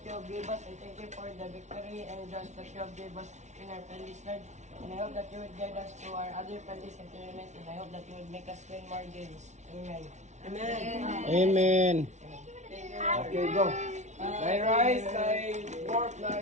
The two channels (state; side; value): late; left; 0.33 ms